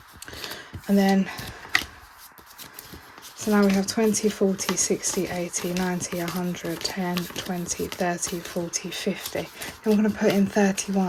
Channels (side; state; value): both; identical; correlation 1.00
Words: And then, so now we have 20, 40, 60, 80, 90, 100, 10, 20, 30, 40, 50. Then we're going to put in